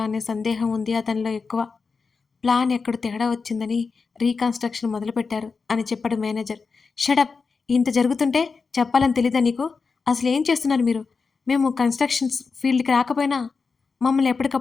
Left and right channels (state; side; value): quieter; right; 4.8 dB